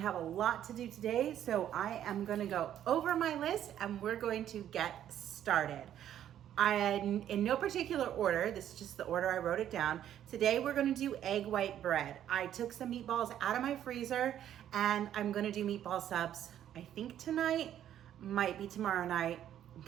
a lot to do today, so I am gonna go over my list and we're going to get started. In no particular order, this is just the order I wrote it down. Today we're gonna do egg white bread. I took some meatballs out of my freezer and I'm gonna do meatball subs, I think tonight, might be tomorrow night. I'm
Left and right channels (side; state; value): left; quieter; 10.8 dB